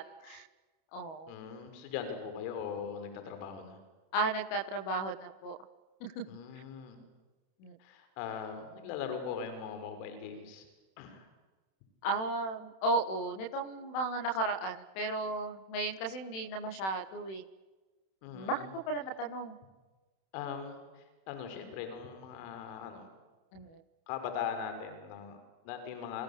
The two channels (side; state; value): right; late; 31 ms